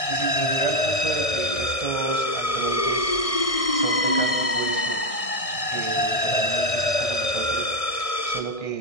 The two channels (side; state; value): right; late; 1.6 ms